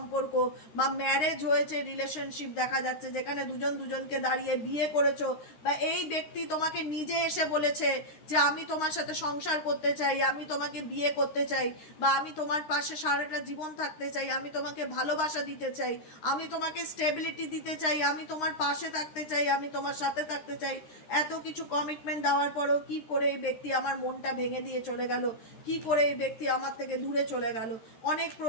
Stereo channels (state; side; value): late; right; 13 ms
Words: বা ম্যারেজ হয়েছে, রিলেশনশিপ দেখা যাচ্ছে, যেখানে দুজন দুজনকে দাঁড়িয়ে বিয়ে করেছো বা এই ব্যক্তি তোমাকে নিজে এসে বলেছে যে আমি তোমার সাথে সংসার করতে চাই, আমি তোমাকে বিয়ে করতে চাই, বা আমি তোমার পাশে সারাটা জীবন থাকতে চাই, আমি তোমাকে ভালোবাসা দিতে চাই, আমি তোমাকে স্টেবিলিটি দিতে চাই, আমি তোমার পাশে থাকতে চাই, আমি তোমার সাথে থাকতে চাই। এত কিছু কমিটমেন্ট দেওয়ার পরেও কি করে এই ব্যক্তি আমার মনটা ভেঙে দিয়ে চলে গেল, কি করে এই ব্যক্তি আমার থেকে দূরে চলে গেল? অনেক